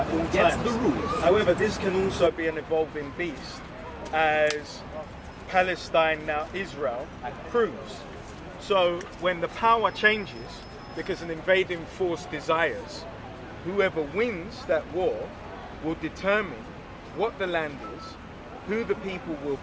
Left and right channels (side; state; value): both; identical; correlation 1.00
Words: all Gets times. the rules. However, this can also be an evolving beast, as Palestine, now Israel, proves. So when the power changes, because an invading force desires, whoever wins that war will determine what the land is, who the people will